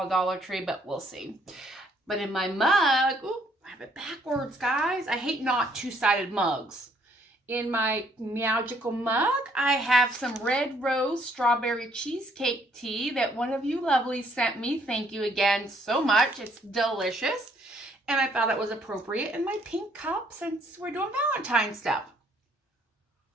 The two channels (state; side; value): normal; both; correlation 0.66